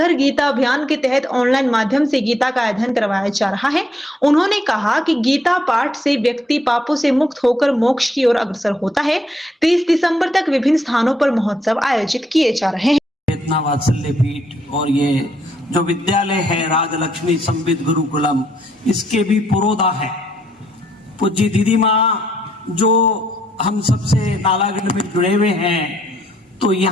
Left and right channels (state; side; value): normal; both; correlation 0.73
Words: गीता अभियान के तहत ऑनलाइन माध्यम से गीता का अध्ययन करवाया जा रहा है। उन्होंने कहा कि गीता पाठ से व्यक्ति पापों से मुक्त होकर मोक्ष की ओर अग्रसर होता है। 30 दिसंबर तक विभिन्न स्थानों पर महोत्सव आयोजित किए जा रहे हैं। चेतना वात्सल्य पीठ और ये जो विद्यालय है राजलक्ष्मी संविद गुरुकुलम, इसके भी पुरोधा है पूज्य दीदी माँ जो हम सबसे नालागढ़ में जुड़े हुए हैं। तो